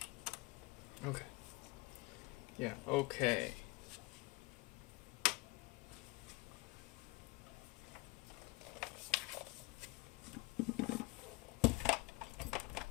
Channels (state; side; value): quieter; right; 23.5 dB